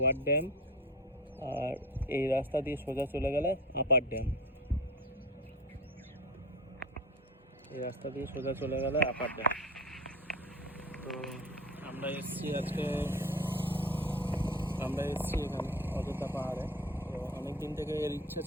ড্যাম, আর এই রাস্তা দিয়ে সোজা চলে গেলে আপার ড্যাম। এই রাস্তা দিয়ে সোজা চলে গেলে আপার ড্যাম। তো আমরা এসেছি আজকে, এখানে অযোধ্যা পাহাড়ে। তো অনেক দিন থেকে এর ইচ্ছে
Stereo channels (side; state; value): both; normal; correlation 0.33